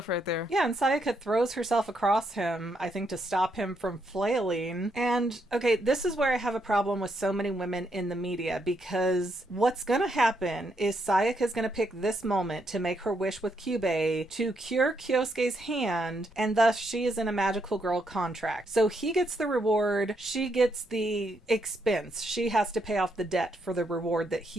right there. Yeah, and Sayaka throws herself across him, I think to stop him from flailing. And, okay, this is where I have a problem with so many women in the media, because what's gonna happen is Sayaka's gonna pick this moment to make her wish with Kyubei to cure Kyosuke's hand, and thus she is in a magical girl contract. So he gets the reward, she gets the expense. She has to pay off the debt for the reward that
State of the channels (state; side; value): normal; both; correlation 0.77